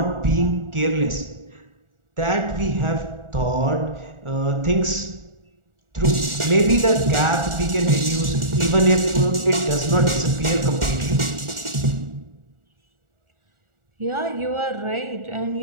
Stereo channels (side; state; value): left; late; 1.4 ms